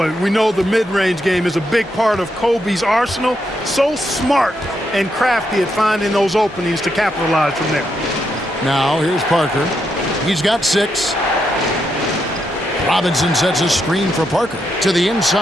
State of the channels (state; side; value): normal; both; correlation 0.81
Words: we know the mid-range game is a big part of Kobe's arsenal. So smart and crafty at finding those openings to capitalize from there. Now here's Parker. He's got 6. Robinson sets a screen for Parker to the